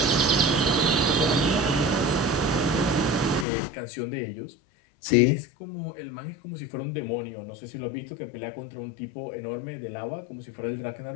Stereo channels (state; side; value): drops out; right; at 3.5 s